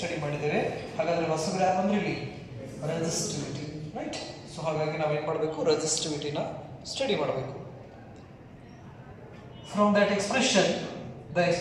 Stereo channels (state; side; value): identical; both; correlation 1.00